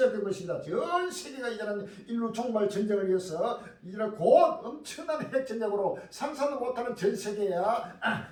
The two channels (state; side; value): identical; both; correlation 1.00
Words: 것입니다. 전 세계가 이제는 인류 종말 전쟁을 위해서 이제는 곧 엄청난 핵전쟁으로 상상도 못하는 전 세계야